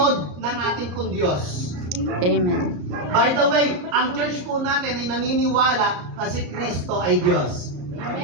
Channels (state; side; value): late; left; 34 ms